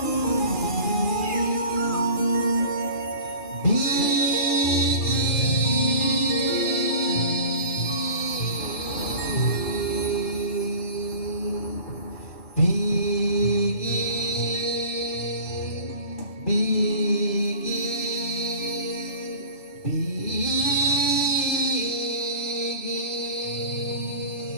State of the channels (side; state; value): right; late; 2.4 ms